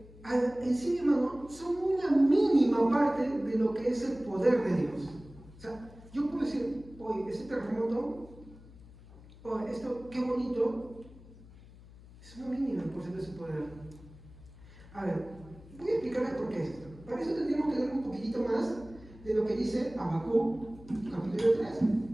sí mismas son una mínima parte de lo que es el poder de Dios. O sea, yo puedo decir, oye, este terremoto, oye, esto, qué bonito, es una mínima porcentaje de su poder. A ver, voy a explicarles por qué es esto. Para eso tendríamos que leer un poquitito más de lo que dice Habacuc, capítulo 3.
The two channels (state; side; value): noise; left; hum, 20 dB below the sound